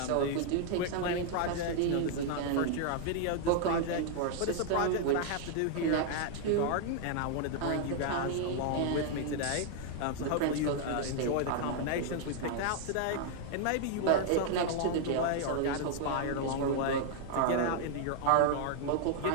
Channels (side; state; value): both; different; correlation 0.00